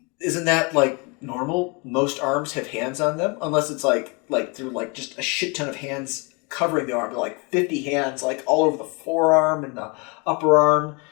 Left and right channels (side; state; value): right; quieter; 30.6 dB